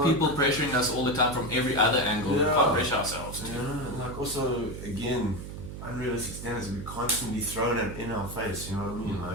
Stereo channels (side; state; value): right; noise; hum, 9 dB below the sound